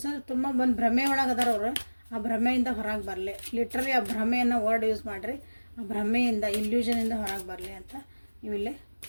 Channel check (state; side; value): inverted; both; correlation -1.00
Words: ತುಂಬ ಒಂದು ಭ್ರಮೆ ಒಳಗೆ ಅದಾರ ಅವರು. ಆ ಭ್ರಮೆಯಿಂದ ಹೊರಗೆ ಬರಲಿ, ಲಿಟ್ರಲಿ ಆ ಭ್ರಮೆಯನ್ನು ವರ್ಡ್ ಯೂಸ್ ಮಾಡಿರಿ. ಆ ಭ್ರಮೆಯಿಂದ, ಇಲ್ಯೂಷನಿಂದ ಹೊರಗೆ ಬರಲಿ ಅಂತ ನೀವಿಲ್ಲಿ